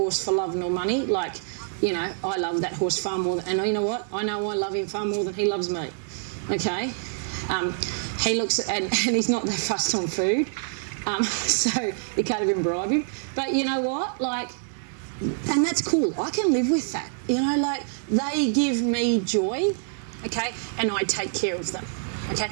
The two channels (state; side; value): silent; left; digital silence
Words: for love nor money. Like, you know, I love that horse far more and you know what? I know I love him far more than he loves me. Okay? He looks, and he's not that fussed on food. So you can't even bribe him. But you know what? Like, and that's cool. I can live with that. You know, like, they give me joy, okay, and I take care of them, okay.